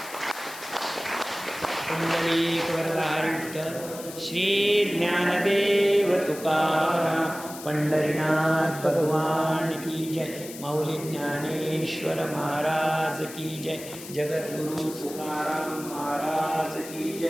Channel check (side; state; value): left; noise; hiss, 13 dB below the sound